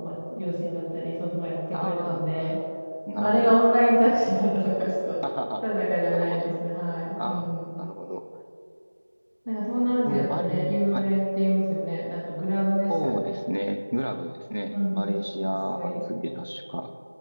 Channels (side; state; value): both; inverted; correlation -1.00